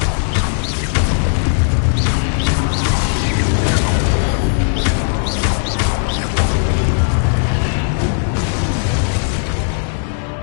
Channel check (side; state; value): right; silent; 68 dB below the other